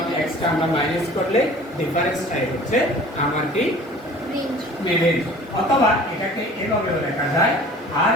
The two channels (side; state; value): both; normal; correlation 0.46